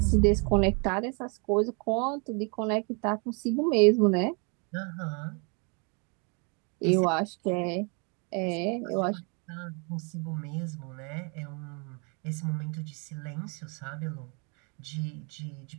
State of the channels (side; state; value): left; quieter; 34.7 dB